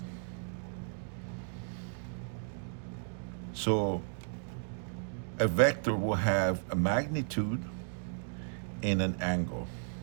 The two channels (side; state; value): left; silent; digital silence